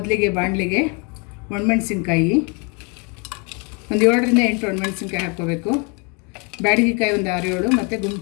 ಬಾಣಲಿಗೆ ಒಣಮೆಣಸಿನ್ಕಾಯಿ ಒಂದು 7ರಿಂದ 8 ಒಣಮೆಣಸಿನ್ಕಾಯಿ ಹಾಕ್ಕೋಬೇಕು. ಬ್ಯಾಡಗಿಕಾಯಿ ಒಂದು 6-7 ಮತ್ತು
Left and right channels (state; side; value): quieter; right; 33.1 dB